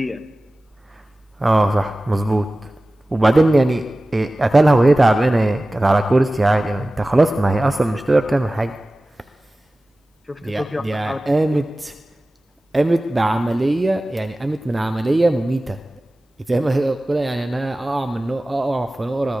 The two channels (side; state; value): both; normal; correlation 0.97